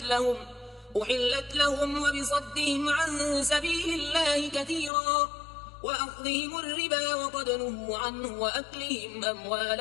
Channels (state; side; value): drops out; right; at 4.9 s